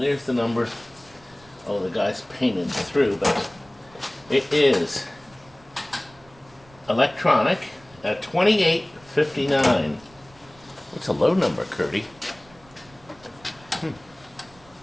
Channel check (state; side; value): noise; right; rumble, 27 dB below the sound